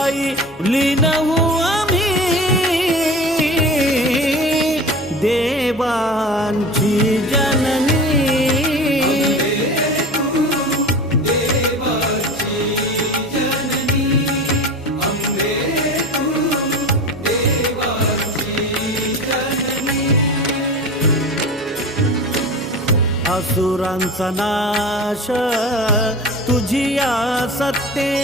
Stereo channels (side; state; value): both; normal; correlation 0.33